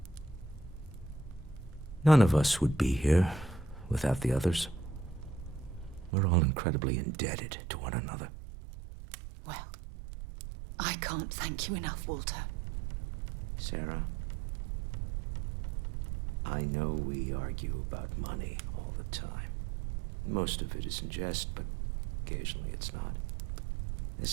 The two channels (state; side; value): drops out; left; at 6.1 s